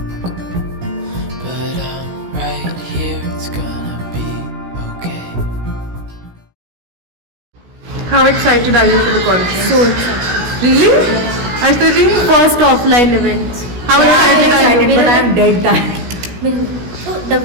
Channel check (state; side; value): late; left; 16 ms